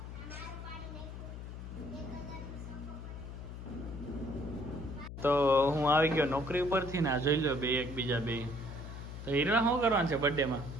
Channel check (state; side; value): noise; left; hum, 9 dB below the sound